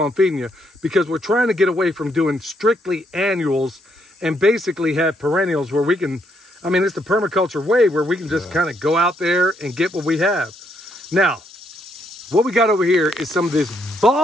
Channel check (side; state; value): both; normal; correlation 0.74